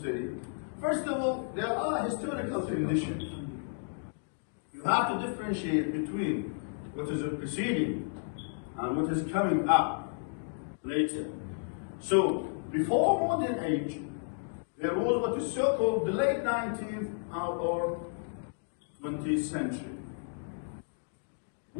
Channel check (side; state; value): right; silent; digital silence